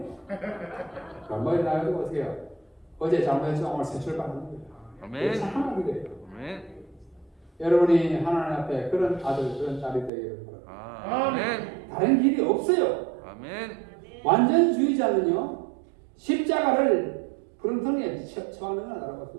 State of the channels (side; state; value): left; drops out; at 10.1 s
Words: 머리 나가지고 어떻게 해요? 어제 잘못해서 오늘 새 출발하는 거예요. 아멘. 착한 아들이에요. 아멘. 여러분이 하나님 앞에 그런 아들 그런 딸이 되기를 바랍니다. 아멘. 다른 길이 없어요. 아멘. 완전주의자는요 십자가를 부렁텅이에 처하는 건